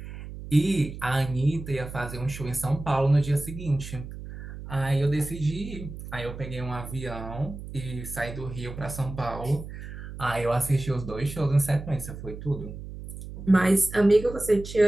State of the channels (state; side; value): noise; right; hum, 11 dB below the sound